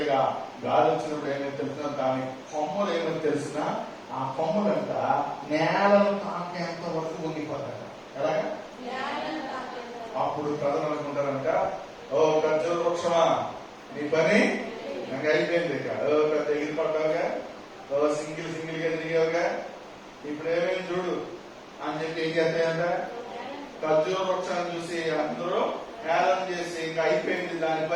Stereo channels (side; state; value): both; identical; correlation 1.00